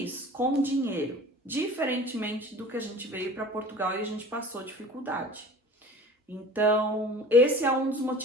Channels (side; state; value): both; normal; correlation 0.42